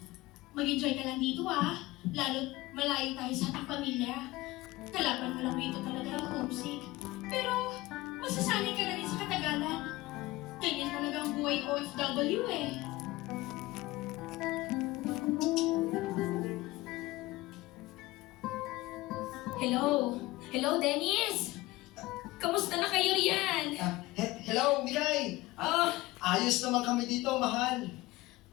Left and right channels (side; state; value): right; quieter; 19.4 dB